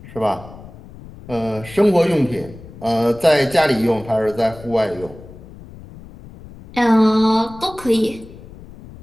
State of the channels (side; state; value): left; noise; rumble, 18 dB below the sound